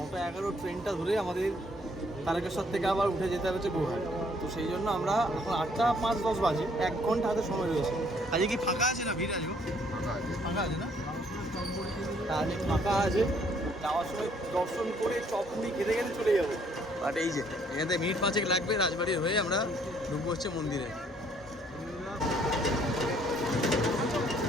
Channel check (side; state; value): both; normal; correlation 0.64